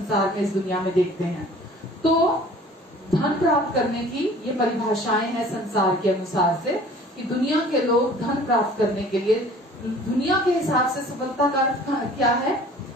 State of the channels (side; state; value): both; normal; correlation 0.49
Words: में, इस दुनिया में देखते हैं। तो धन प्राप्त करने की ये परिभाषाएं हैं संसार के अनुसार से कि दुनिया के लोग धन प्राप्त करने के लिए, दुनिया के हिसाब से सफलता का अर्थ क्या है?